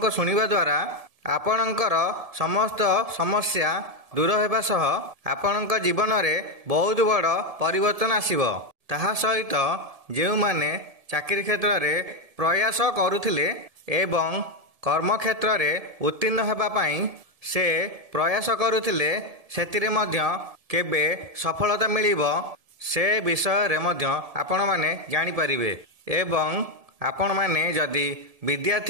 सुनिबा द्वारा आपणकर समस्त समस्या दूर हेबा सह आपणक जीवन रे बहुत बड़ परिवर्तन आसीबो। ताहा सहित जेउ माने चाकरी क्षेत्र रे प्रयास करुथिले एवं कर्म क्षेत्र रे उत्तीर्ण हेबा पई से प्रयास करुथिले सेतिरे मध्य केबे सफलता मिलिबो से विषय रे मध्य आपण माने जानि परिबे। एवं आपण माने जदि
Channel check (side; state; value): left; late; 1.7 ms